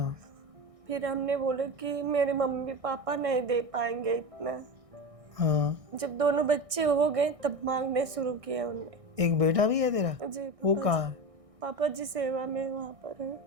फिर हमने बोला कि मेरे मम्मी पापा नहीं दे पाएंगे इतना। हाँ। जब दोनों बच्चे हो गए तब मांगने शुरू किया उनने। एक बेटा भी है तेरा? जी वो पापा कहाँ जी। है? पापा जी सेवा में वहाँ पर है।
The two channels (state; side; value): late; left; 1.6 ms